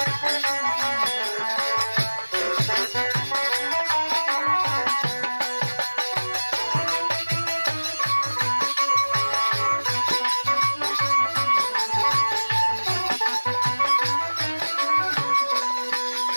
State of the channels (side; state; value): both; inverted; correlation -1.00